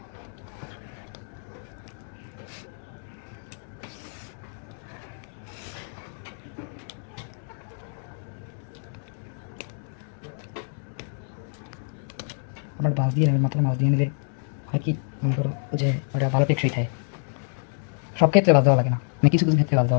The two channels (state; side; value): silent; right; 60 dB below the other